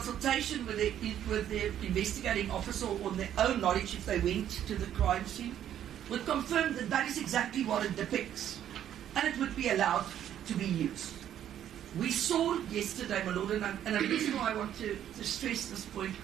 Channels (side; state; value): left; quieter; 10.6 dB